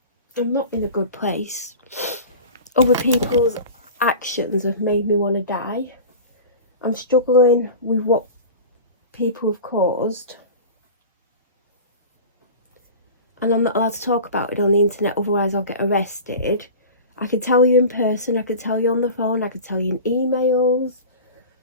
I'm not in a good place. Other people's actions have made me want to die. I'm struggling with what people have caused, and I'm not allowed to talk about it on the internet, otherwise I'll get arrested. I could tell you in person, I could tell you on the phone, I could tell you in emails.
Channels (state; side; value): inverted; both; correlation -0.34